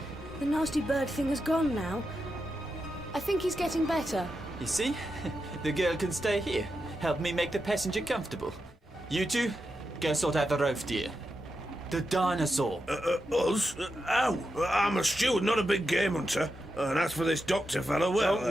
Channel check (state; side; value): normal; both; correlation 0.87